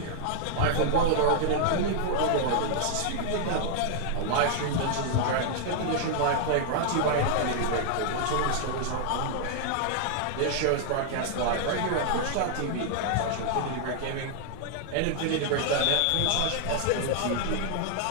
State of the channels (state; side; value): different; both; correlation 0.00